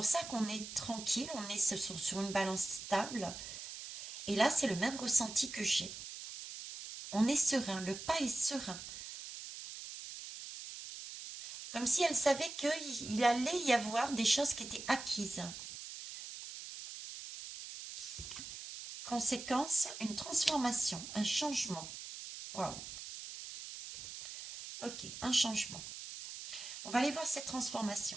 ça qu'on est tranquille, on est sur une balance stable. Et là, c'est le même ressenti que j'ai. On est serein, le pas est serein. Comme si elle savait qu'il allait y avoir des choses qui étaient acquises. Conséquence, une transformation, un changement. Waouh. Ok, un changement. On va aller voir cette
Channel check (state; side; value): noise; right; hiss, 10 dB below the sound